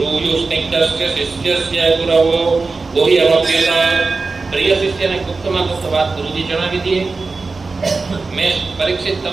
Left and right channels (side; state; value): left; quieter; 4.0 dB